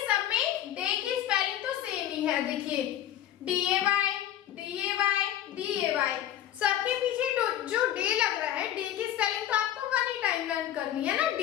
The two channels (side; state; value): right; quieter; 11.8 dB